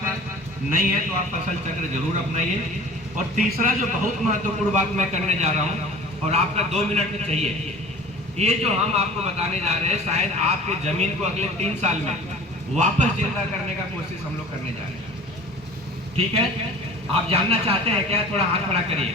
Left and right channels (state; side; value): normal; both; correlation 0.42